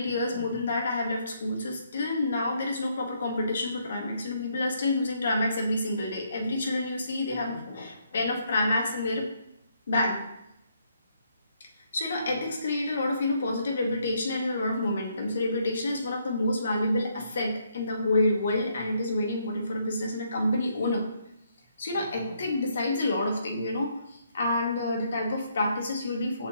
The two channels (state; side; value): inverted; both; correlation -0.72